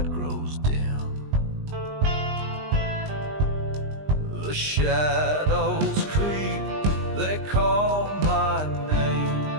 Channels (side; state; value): left; late; 20 ms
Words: grows dim. The shadows creep, they call my name.